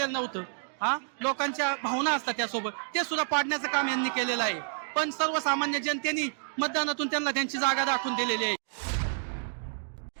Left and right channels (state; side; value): silent; left; digital silence